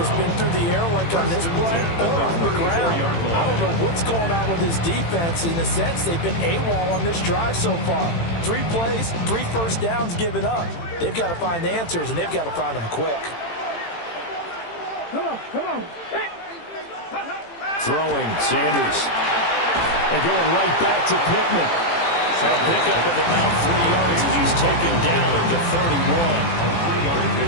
been through the air like on this play or on the ground. I don't know what's going on with this defense. In a sense, they've been AWOL on this drive so far. 3 plays, 3 first downs given up. They've got to find answers, and they've got to find them quick. Come on. Throwing, Sanders. And going right back to Pittman. A pickup of about 3 yards as he's taken down at the 31.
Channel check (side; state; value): right; late; 18 ms